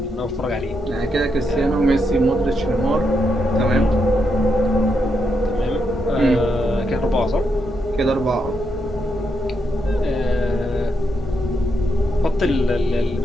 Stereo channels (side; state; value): both; normal; correlation 0.81